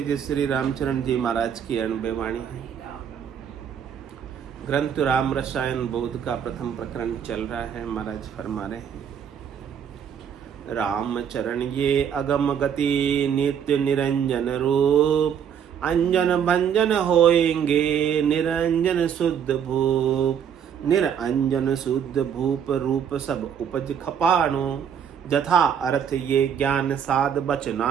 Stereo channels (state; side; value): quieter; left; 8.2 dB